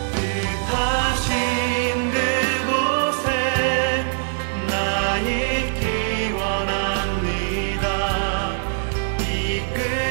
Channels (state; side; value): silent; left; digital silence